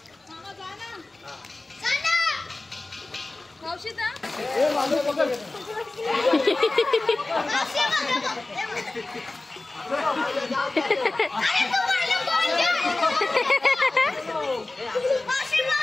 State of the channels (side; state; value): right; quieter; 3.0 dB